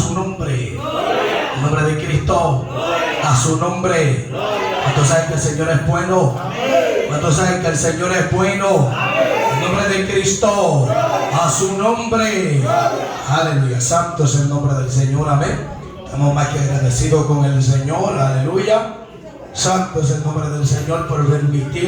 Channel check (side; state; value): both; identical; correlation 1.00